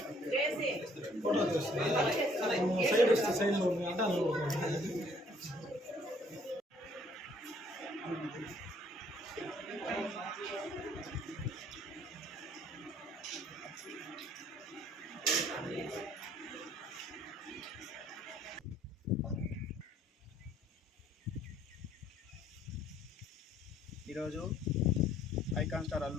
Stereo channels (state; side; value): normal; both; correlation 0.62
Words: ఈరోజు ఐకాన్ స్టార్